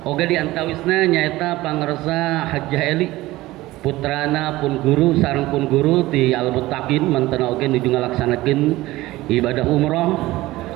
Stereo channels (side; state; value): left; quieter; 18.0 dB